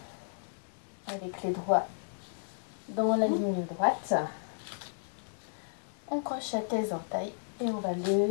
avec les doigts dans la ligne droite. On crochette les entailles et on va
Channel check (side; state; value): right; silent; digital silence